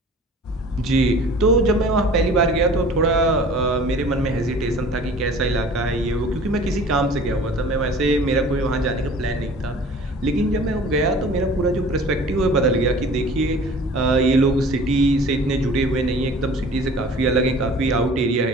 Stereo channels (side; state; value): both; normal; correlation 0.46